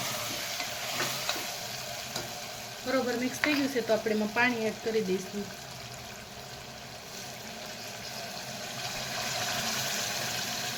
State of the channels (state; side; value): identical; both; correlation 1.00